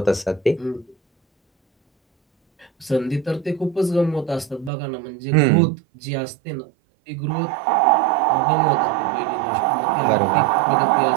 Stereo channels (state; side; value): drops out; left; at 4.7 s